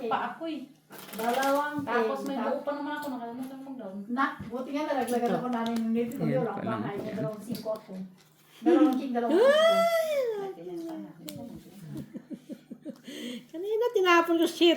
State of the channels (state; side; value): identical; both; correlation 1.00